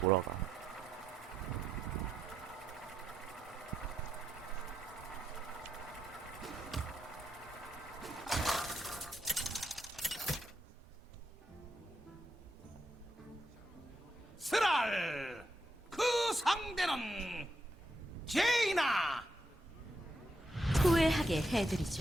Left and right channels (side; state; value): both; normal; correlation 0.82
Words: 스랄 그 상대는 제이나. 후회하게 해드리죠.